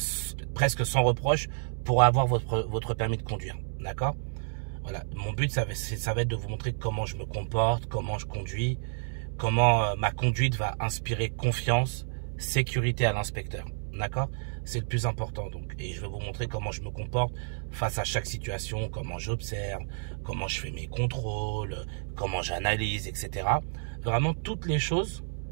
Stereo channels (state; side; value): silent; left; digital silence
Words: presque sans reproche pour avoir votre permis de conduire, d'accord? Voilà, mon but ça va être de vous montrer comment je me comporte, comment je conduis, comment ma conduite va inspirer confiance, sécurité à l'inspecteur, d'accord? C'est le plus important donc, et je vais vous montrer comment je me comporte face à chaque situation, comment j'observe, comment je fais mes contrôles, comment j'analyse, etc. Vraiment toutes les choses,